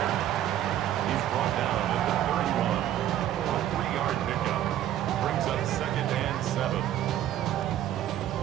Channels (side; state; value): left; quieter; 12.0 dB